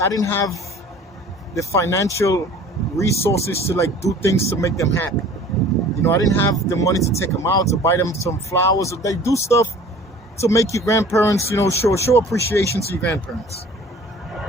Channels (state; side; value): normal; both; correlation 0.47